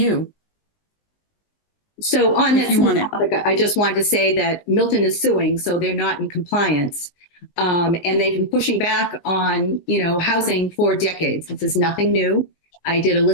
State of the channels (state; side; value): late; right; 19 ms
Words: So on If that you want it. topic, I just wanted to say that Milton is suing, so they're not in compliance. And they've been pushing back on, housing for decades. This is nothing new. I did a